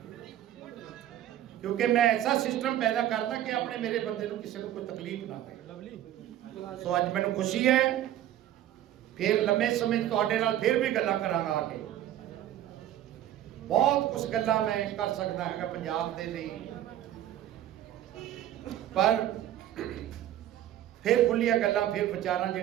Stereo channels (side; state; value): left; quieter; 12.3 dB